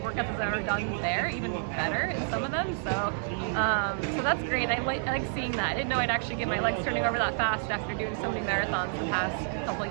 workouts as I've ever done there, even better in some of them. So that's great. I like seeing that. I didn't know I'd actually get my legs turning over that fast after doing so many marathons the past couple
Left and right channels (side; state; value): left; silent; digital silence